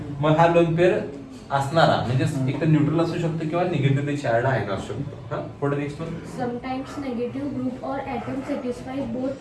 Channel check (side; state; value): both; identical; correlation 1.00